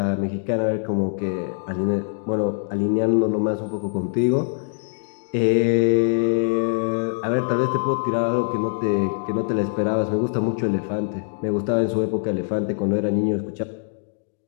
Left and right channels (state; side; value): silent; right; digital silence